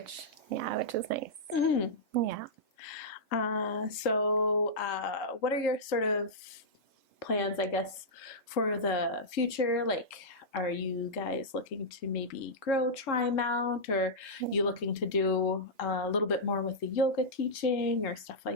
is nice. Yeah. So what are your sort of plans, I guess, for the future? Like, are you guys looking to maybe grow Trimount, or you looking to do a little bit more with the yoga teaching or stuff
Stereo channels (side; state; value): both; normal; correlation -0.10